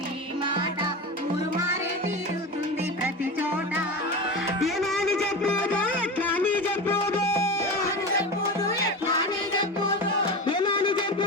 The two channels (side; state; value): both; normal; correlation 0.25